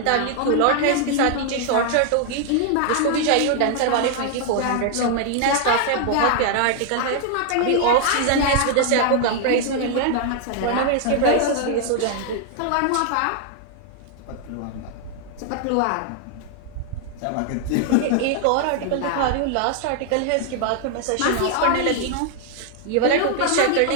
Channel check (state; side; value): different; both; correlation 0.00